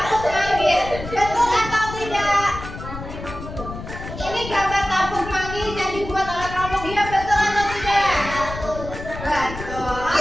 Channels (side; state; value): left; noise; rumble, 10 dB below the sound